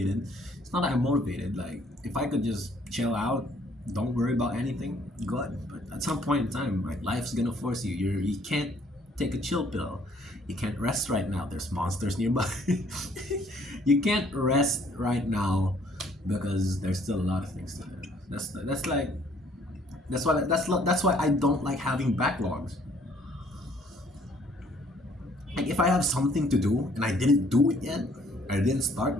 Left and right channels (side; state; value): both; normal; correlation 0.62